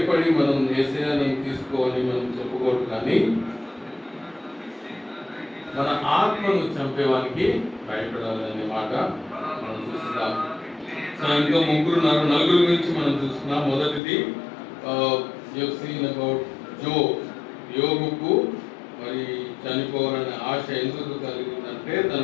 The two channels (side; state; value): right; drops out; at 14.0 s